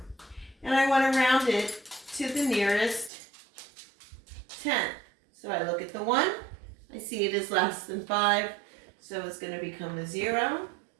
and I want to round it to the nearest 10. So I look at the 1, I see it is less than 5, so it's going to become a 0,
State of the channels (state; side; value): drops out; left; at 3.1 s